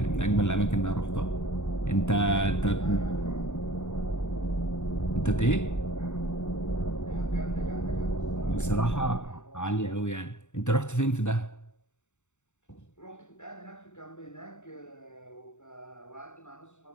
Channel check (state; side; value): late; right; 0.84 ms